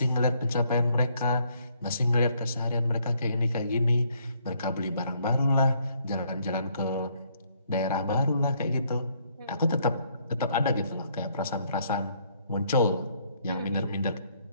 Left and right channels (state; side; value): inverted; both; correlation -0.68